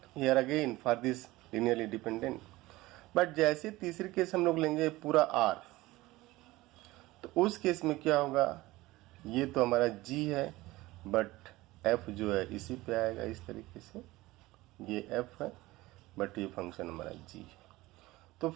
here again for this linearly dependent. But जैसे तीसरी केस हम लोग लेंगे पूरा r, तो उस केस में क्या होगा, ये तो हमारा g है बट f जो है इसी पे आएगा इस तरीके से, ये f है बट ये फंक्शन हमारा g है। तो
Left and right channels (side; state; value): left; quieter; 19.0 dB